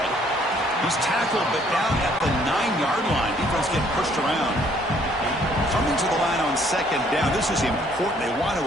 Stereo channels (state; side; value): normal; both; correlation 0.63